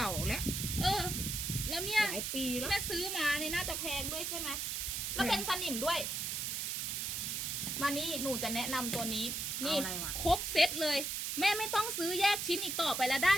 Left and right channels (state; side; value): noise; right; hiss, 2 dB below the sound